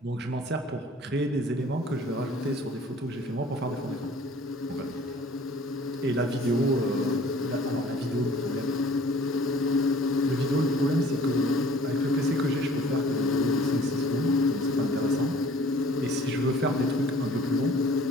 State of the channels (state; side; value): normal; both; correlation 0.51